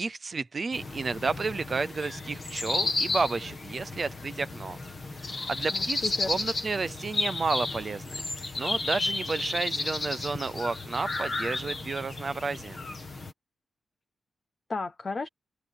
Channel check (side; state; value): both; normal; correlation 0.90